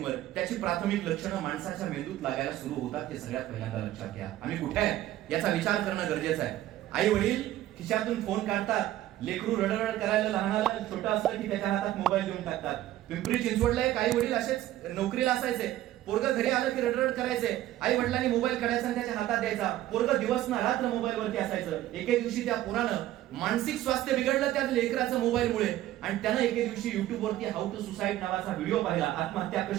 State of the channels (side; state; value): left; quieter; 14.1 dB